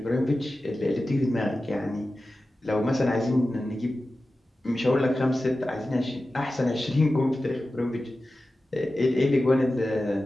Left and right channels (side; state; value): both; normal; correlation 0.94